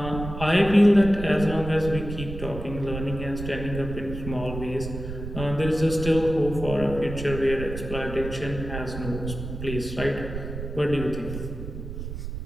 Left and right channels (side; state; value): right; noise; rumble, 8 dB below the sound